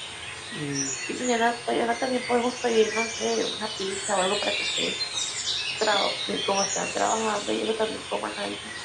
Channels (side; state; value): both; identical; correlation 1.00